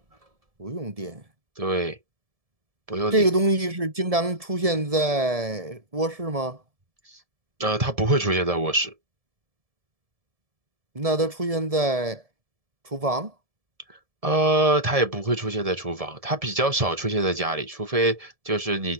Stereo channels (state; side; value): late; left; 1.7 ms